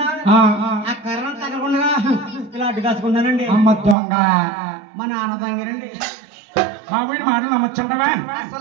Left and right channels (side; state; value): left; drops out; at 4.0 s